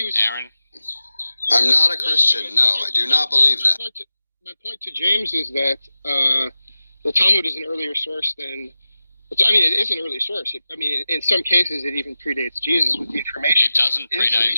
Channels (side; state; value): both; inverted; correlation -0.95